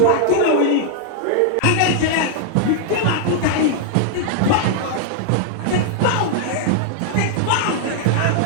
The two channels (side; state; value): both; different; correlation -0.01